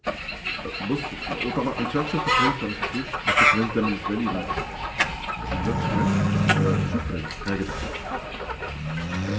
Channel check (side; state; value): both; identical; correlation 1.00